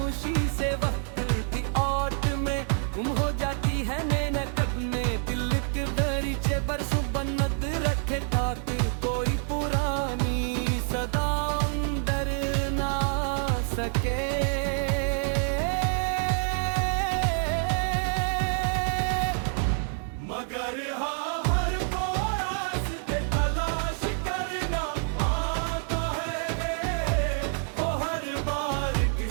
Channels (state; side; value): silent; left; 56 dB below the other